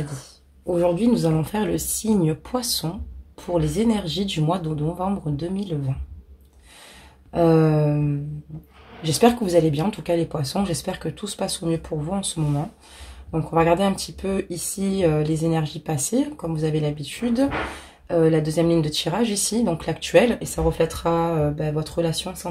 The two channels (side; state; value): both; identical; correlation 1.00